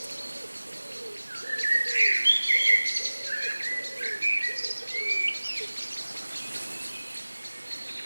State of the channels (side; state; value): both; inverted; correlation -1.00